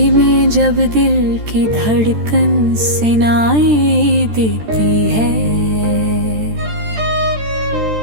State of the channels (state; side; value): late; left; 13 ms